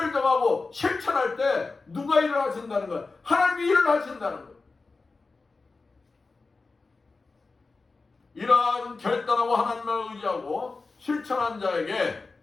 정하고 실천할 때 누가 일을 하신다는 거예요? 하나님이 일을 하신다는 거예요. 이러한 결단하고 하나님을 의지하고 실천한 자에게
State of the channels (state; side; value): quieter; right; 3.9 dB